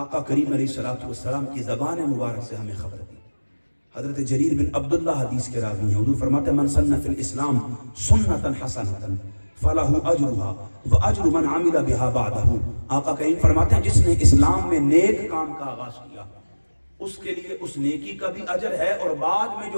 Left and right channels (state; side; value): inverted; both; correlation -1.00